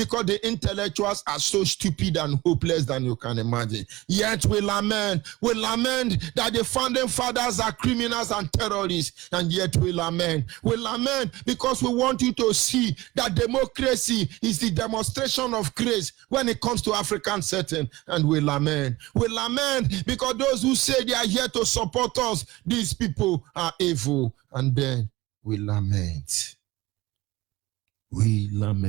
the intellectuals are so stupid and hopeless than you can imagine. Yet we lament that the founding fathers are criminals and terrorists, and yet we lament because we want you to see that democracy is the demonstration of grace when it comes to African setting, and we lament because those who say they are here to support us, these people are evil, and then we lament.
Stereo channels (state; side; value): quieter; left; 19.6 dB